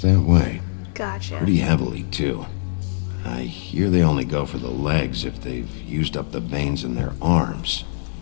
that way. Gotcha. Pretty heavily, too. I hear they only go for the legs if they've used up the veins in their arms,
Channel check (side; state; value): right; silent; digital silence